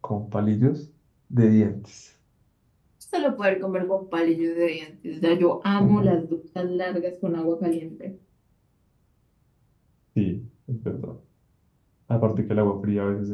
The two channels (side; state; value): both; identical; correlation 1.00